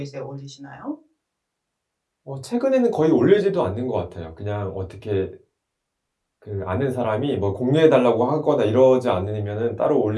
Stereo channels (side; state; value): both; identical; correlation 1.00